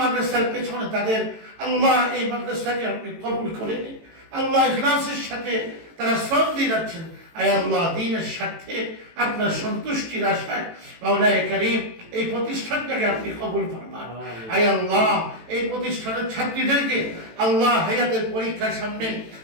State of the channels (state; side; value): late; left; 18 ms